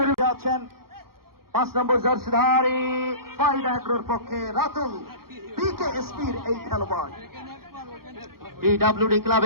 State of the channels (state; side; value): late; left; 0.93 ms